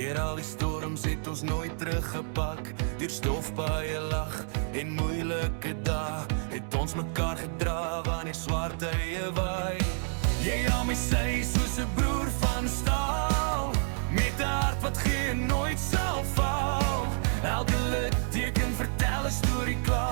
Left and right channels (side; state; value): left; silent; digital silence